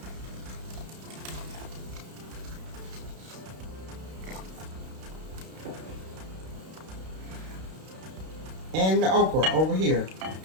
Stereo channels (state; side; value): late; left; 32 ms